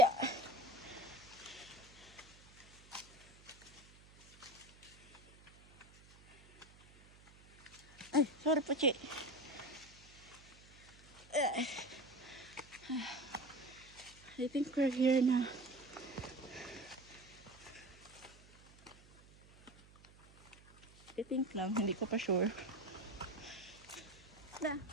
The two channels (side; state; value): right; noise; hum, 23 dB below the sound